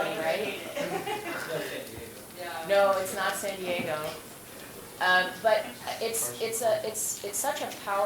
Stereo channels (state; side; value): identical; both; correlation 1.00